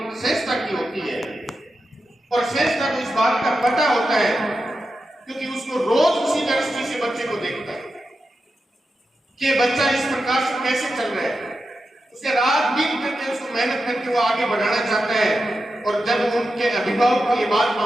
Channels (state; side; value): normal; both; correlation 0.89